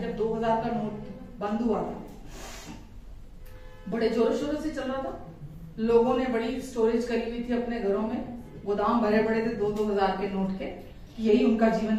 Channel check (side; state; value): both; identical; correlation 1.00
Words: जब 2000 का नोट बंद हुआ था, बड़े जोरों शोरों से चल रहा था, लोगों ने बड़ी स्टोरेज करी हुई थी अपने घरों में, गोदाम भरे पड़े थे 2-2 हजार के नोट के, यही उनका जीवन